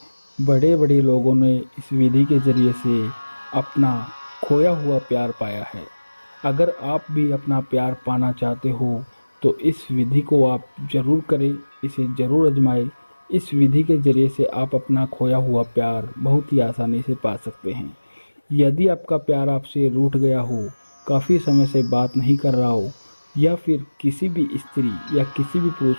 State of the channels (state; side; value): inverted; both; correlation -1.00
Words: बड़े बड़े लोगों ने इस विधि के जरिए से अपना खोया हुआ प्यार पाया है। अगर आप भी अपना प्यार पाना चाहते हो तो इस विधि को आप जरूर करें, इसे जरूर आजमाएं। इस विधि के जरिए से आप अपना खोया हुआ प्यार बहुत ही आसानी से पा सकते हैं। यदि आपका प्यार आपसे रूठ गया हो, काफ़ी समय से बात नहीं कर रहा हो, या फिर किसी भी स्त्री या किसी भी